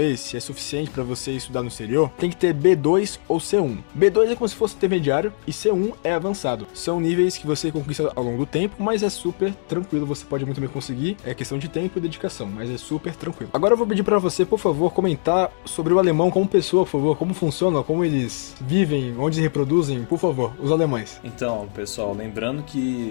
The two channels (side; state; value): right; silent; digital silence